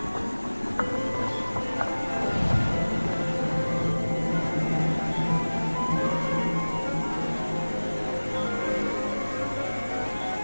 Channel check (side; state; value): both; inverted; correlation -1.00